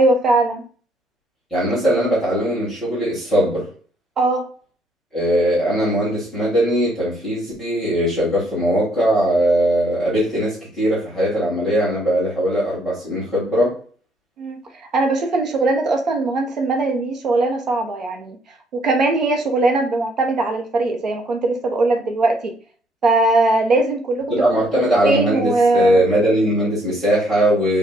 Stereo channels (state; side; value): normal; both; correlation 0.67